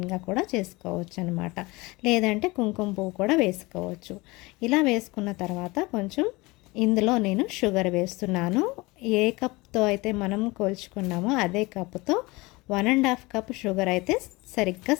కూడా చేసుకోవచ్చు అనమాట. లేదంటే కుంకుమ పువ్వు కూడా వేసుకోవచ్చు. ఇలా వేసుకున్న తర్వాత కొంచెం ఇందులో నేను షుగర్ వేస్తున్నాను. ఏ కప్తో అయితే మనం కొలుచుకున్నామో అదే కప్తో 1.5 కప్ షుగర్ అయితే సరిగ్గా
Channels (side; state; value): right; quieter; 23.1 dB